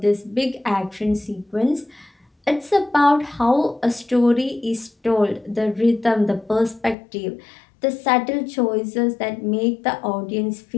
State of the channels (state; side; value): drops out; right; at 7.0 s